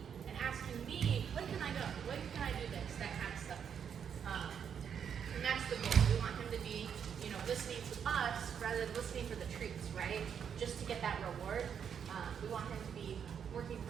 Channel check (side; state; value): left; quieter; 7.7 dB